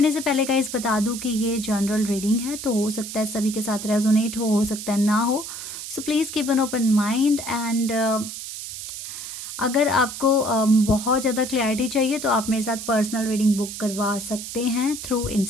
से पहले गाइस बता दूं कि ये जनरल रीडिंग है, तो हो सकता है सभी के साथ रेजोनेट हो सकता है ना हो। So please keep an open mind and अगर आपको बहुत ज़्यादा क्लैरिटी चाहिए तो आप मेरे साथ पर्सनल रीडिंग बुक करवा सकते हैं थ्रू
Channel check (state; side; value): noise; right; hiss, 9 dB below the sound